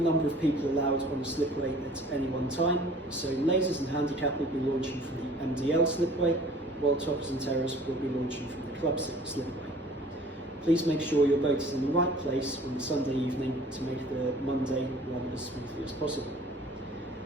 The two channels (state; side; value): normal; both; correlation 0.50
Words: number of people allowed on the slipway at any one time, so lasers and handicap will be launching from the MDL slipway, while toppers and terrors will be launching from the club slipway. Please make sure your boat is in the right place on the Sunday evening to make the Monday run as smoothly as possible.